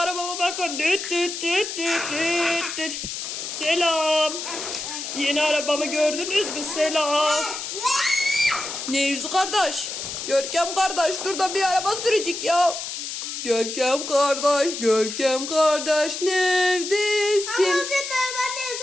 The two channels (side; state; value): left; noise; hiss, 6 dB below the sound